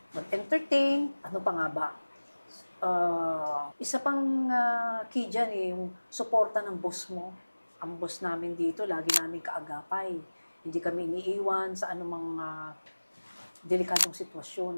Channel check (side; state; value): both; inverted; correlation -1.00